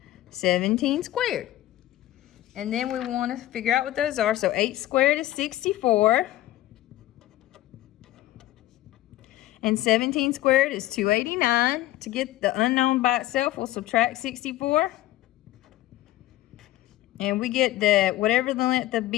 17 squared. And then we want to figure out what those are. So 8 squared is 64. And 17 squared is 289. To get the unknown by itself, we'll subtract 64. And we get the, whatever the length of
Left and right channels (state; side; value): quieter; right; 15.4 dB